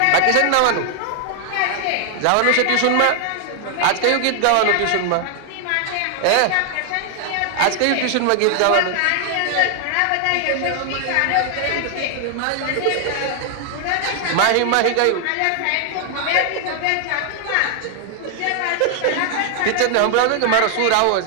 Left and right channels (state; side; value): different; both; correlation 0.00